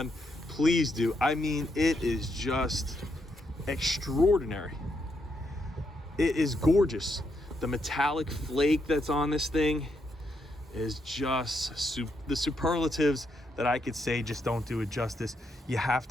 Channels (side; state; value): both; normal; correlation 0.79